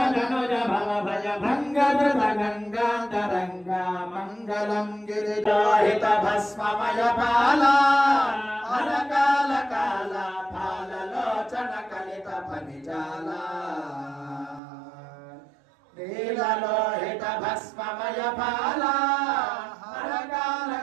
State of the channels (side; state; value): left; drops out; at 14.6 s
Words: ధనుజ భవ భయ భంగ ధృత గంగాంతరంగ మంగళం గిరి లోహిత భస్మమయ పాల అరకాల కాల పాలలోచన కలిత ఫణిజాల నీలలోహిత భస్మమయ పాల అరకాల